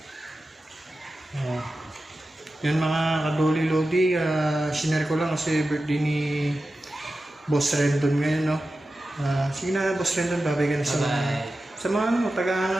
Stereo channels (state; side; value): normal; both; correlation 0.93